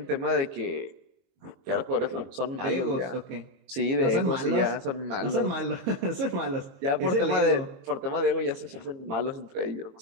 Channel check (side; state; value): left; late; 22 ms